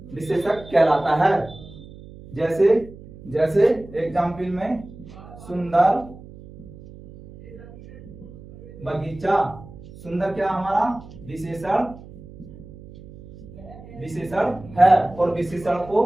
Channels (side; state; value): right; noise; hum, 18 dB below the sound